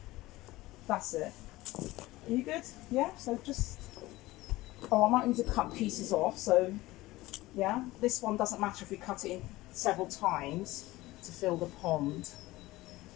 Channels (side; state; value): right; quieter; 18.7 dB